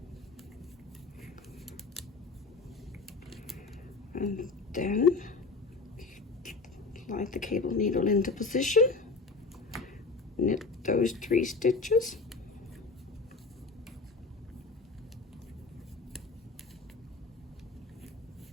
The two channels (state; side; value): quieter; right; 3.9 dB